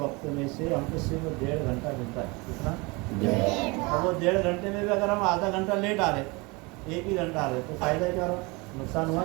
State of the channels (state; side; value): quieter; left; 26.4 dB